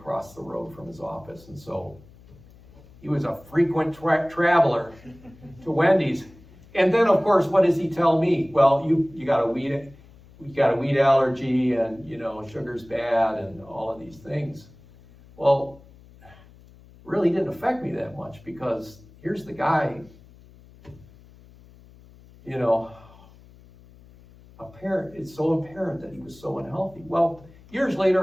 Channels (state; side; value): noise; left; hum, 24 dB below the sound